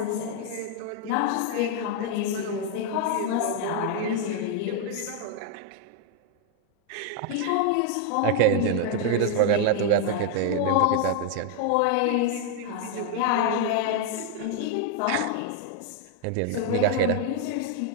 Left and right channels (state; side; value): different; both; correlation 0.00